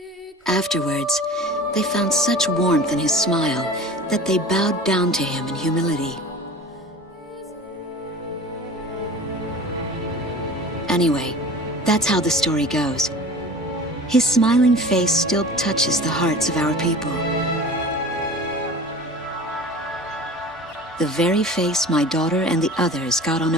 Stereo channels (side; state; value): both; normal; correlation 0.39